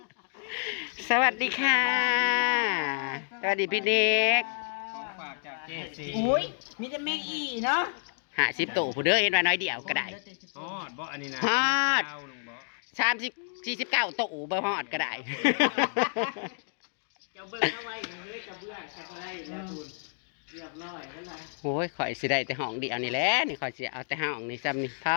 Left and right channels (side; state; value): right; silent; digital silence